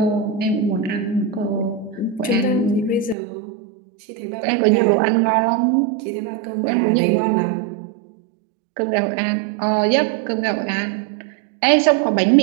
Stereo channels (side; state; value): left; drops out; at 3.2 s